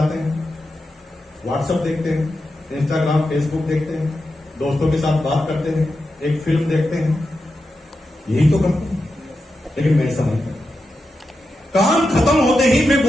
हैं, व्हाट्सएप देखते हैं, इंस्टाग्राम फेसबुक देखते हैं, दोस्तों के साथ बात करते हैं, एक फिल्म देखते हैं, यही तो करते हैं। लेकिन मैं समझता काम खत्म होते ही मैं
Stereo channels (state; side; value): normal; both; correlation 0.89